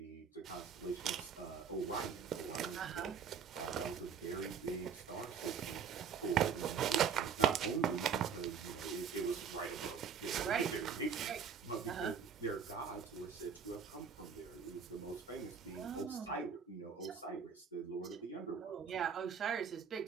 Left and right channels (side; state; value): left; quieter; 6.9 dB